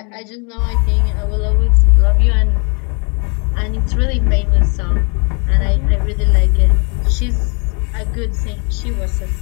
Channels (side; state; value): right; quieter; 36.0 dB